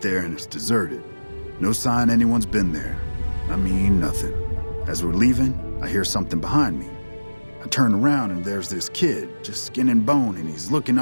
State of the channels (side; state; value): both; inverted; correlation -1.00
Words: and it's deserted. No sign anyone's been there. I mean, nothing. As we're leaving, I hear something behind me. I turn around and there's this kid, just skin and bone, and he's looking